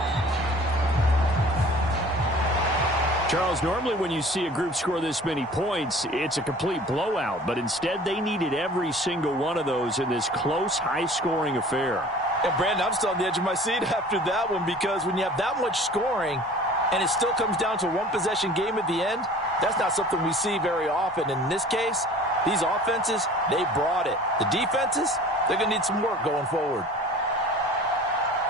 Charles, normally when you see a group score this many points, it's a complete blowout. But instead, they needed every single one of those in this close, high-scoring affair. And, Brandon, I'm still on the edge of my seat after that one because when you have that much scoring and it still comes down to a one-possession game at the end, that's not something we see very often. And in this case, these offenses, they brought it. The defenses, they're going to need some work going forward.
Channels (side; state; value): both; normal; correlation 0.46